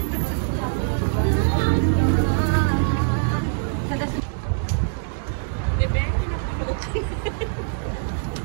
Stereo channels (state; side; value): silent; left; digital silence